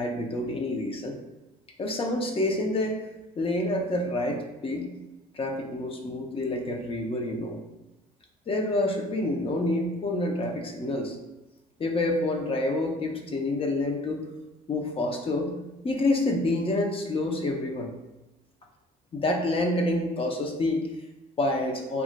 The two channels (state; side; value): normal; both; correlation 0.51